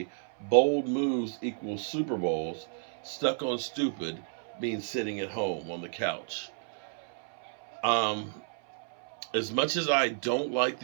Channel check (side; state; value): left; silent; 57 dB below the other